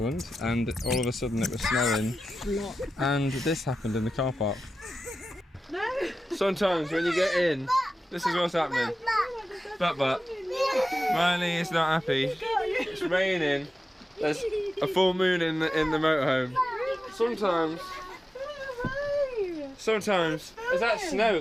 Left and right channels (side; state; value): both; normal; correlation 0.93